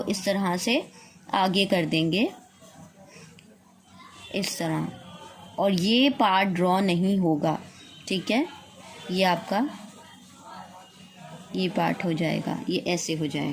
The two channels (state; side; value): identical; both; correlation 1.00